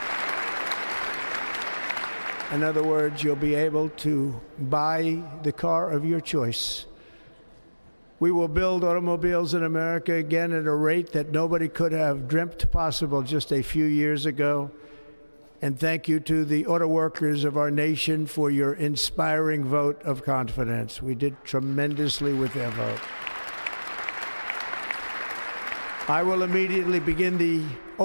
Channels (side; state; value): both; inverted; correlation -1.00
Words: In other words, you'll be able to buy the car of your choice. We will build automobiles in America again at a rate that nobody could have dreamt possible just a few years ago. And thank you to the auto workers of our nation for your inspiring vote of confidence. We did tremendously with their vote. I will immediately begin the